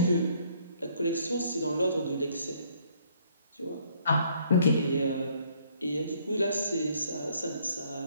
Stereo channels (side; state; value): both; inverted; correlation -0.64